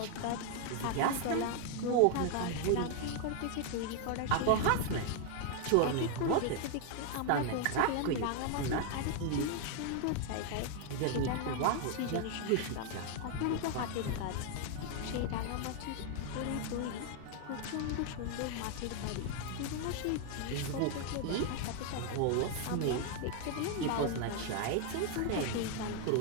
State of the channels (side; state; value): both; different; correlation 0.00